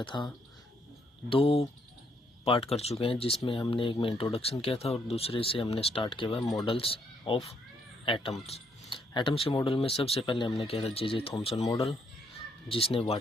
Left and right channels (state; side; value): normal; both; correlation 0.72